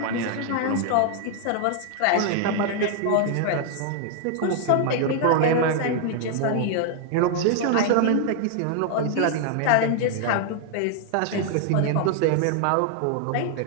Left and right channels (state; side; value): different; both; correlation 0.00